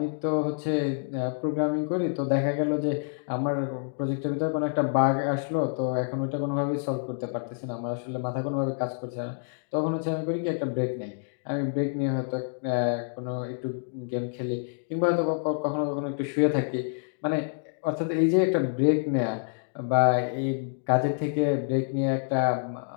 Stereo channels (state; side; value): silent; right; digital silence